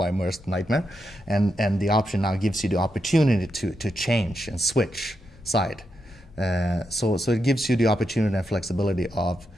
worst nightmare. And the option now gives you the opportunity to change and switch side. So it gives you the opportunity and flexibility of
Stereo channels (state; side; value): normal; both; correlation 0.84